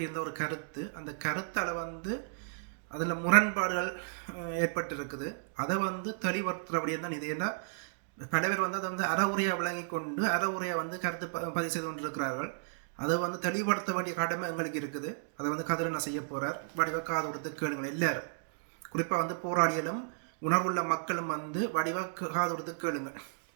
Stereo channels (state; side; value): silent; left; digital silence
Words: ஒரு கருத்து. அந்த கருத்தால் அதில் முரண்பாடுகள் ஏற்பட்டிருக்குது. அதை தெளிவுறுத்துகிற விடயம் தான் இது. ஏன்னா பல பேர் அதை அறவுரையாக விளங்கி கொண்டு அறவுரையாக கருத்து பதிவு செய்து கொண்டிருக்கிறார்கள். அதை தெளிவுபடுத்த வேண்டிய கடமை எங்களுக்கு இருக்குது. அதை கதிரனை செய்ய போகிறார். வடிவ காது கொடுத்து கேளுங்கள் எல்லாரும். குறிப்பாக போராளிகளும் உணர்வுள்ள மக்களும் வடிவாக காது கொடுத்து கேளுங்க.